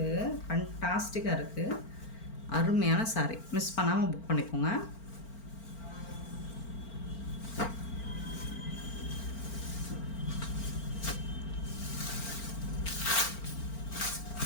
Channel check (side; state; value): right; late; 4.4 ms